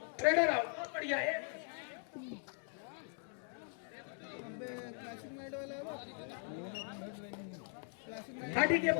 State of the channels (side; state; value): right; silent; 51 dB below the other